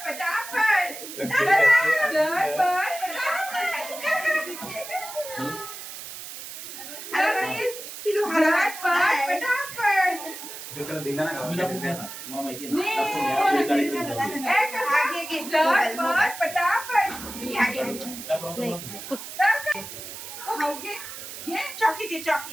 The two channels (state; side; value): noise; right; hiss, 11 dB below the sound